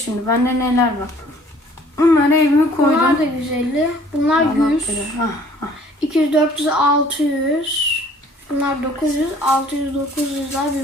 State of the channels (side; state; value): both; normal; correlation 0.55